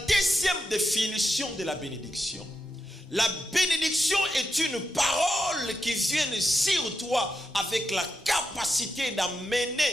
définition de la bénédiction. La bénédiction est une parole qui vient sur toi avec la capacité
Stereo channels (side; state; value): both; normal; correlation 0.86